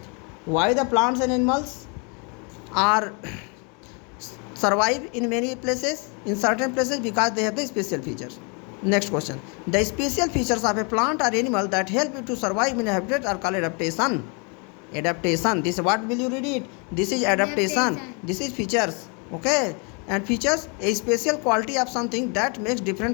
why the plants and animals are survive in many places, in certain places, because they have the special features. Next question. The special features of a plant or animal that help it to survive in a habitat are called adaptation. Adaptation. This, what will you read it? This is adaptation. This is features. Okay. And features, a special quality of something that makes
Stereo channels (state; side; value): quieter; right; 34.5 dB